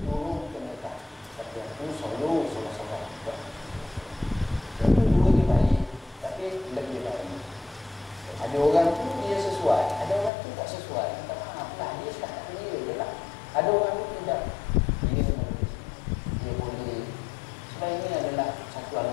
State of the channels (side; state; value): right; drops out; at 10.3 s